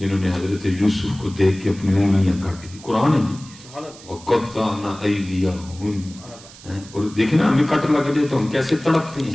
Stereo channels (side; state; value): right; noise; hiss, 20 dB below the sound